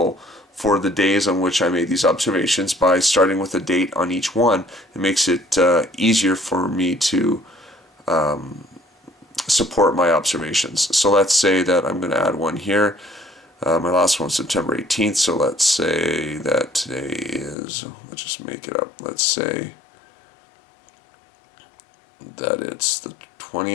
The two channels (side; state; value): right; drops out; at 17.6 s